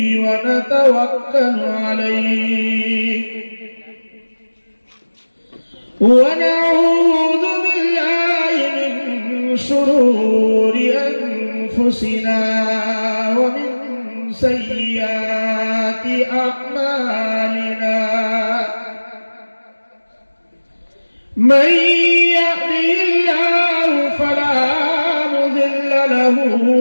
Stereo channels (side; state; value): both; inverted; correlation -1.00